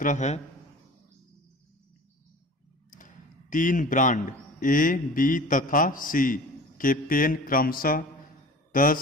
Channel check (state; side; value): normal; both; correlation 0.40